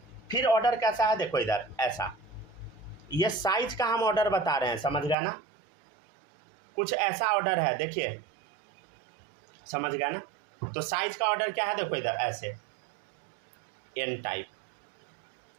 फिर ऑर्डर कैसा है देखो इधर ऐसा। ये साइज का हम ऑर्डर बता रहे हैं, समझ गया ना, कुछ ऐसा ऑर्डर है, देखिए समझ गया ना। तो साइज का ऑर्डर क्या है, देखो इधर ऐसे एन टाइप,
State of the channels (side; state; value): left; drops out; at 5.2 s